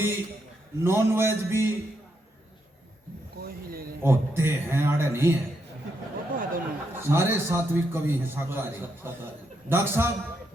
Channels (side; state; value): both; normal; correlation 0.80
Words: नॉन वेज भी होते हैं, आड़े नहीं है, सारे सात्विक कवि हैं, शाकाहारी। डॉक्टर साहब